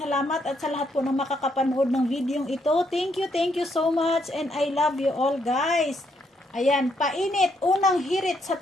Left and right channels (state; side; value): normal; both; correlation 0.74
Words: at sa lahat po ng makakapanood ng videong ito. Thank you so much and I love you all guys. Ayan, painit, unang hirit sa